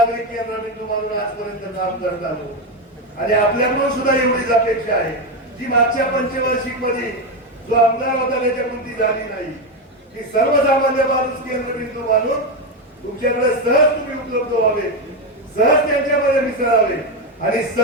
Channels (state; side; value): normal; both; correlation 0.11